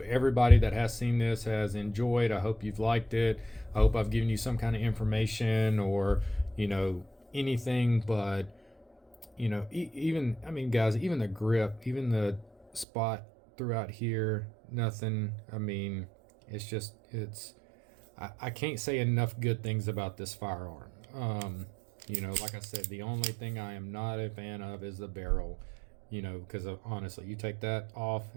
everybody that has seen this has enjoyed. I hope you've liked it. I hope I've given you some kind of information or, anything, but, even, guys, even the grip, even the spot throughout here, nothing. I mean, I can't say enough good things about this firearm. Like I said, the only thing I am not a fan of is the barrel, because honestly, you take that off,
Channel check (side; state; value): left; drops out; at 12.9 s